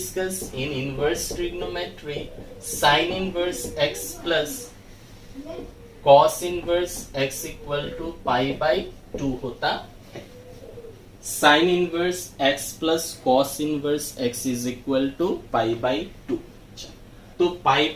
in inverse trigonometry sine inverse x plus cos inverse x equal to pi by 2 होता है, sine inverse x plus cos inverse x is equal to pi by 2, तो पाई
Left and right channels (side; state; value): both; identical; correlation 1.00